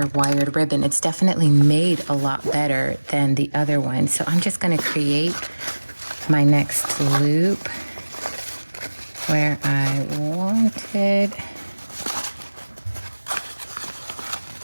wired ribbon. It's definitely made a lot better than the other one. So I'm just going to create my next loop where I wanted.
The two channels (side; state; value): both; inverted; correlation -1.00